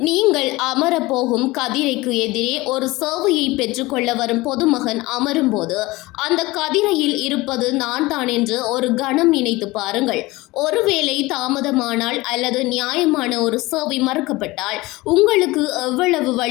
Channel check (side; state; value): right; quieter; 20.8 dB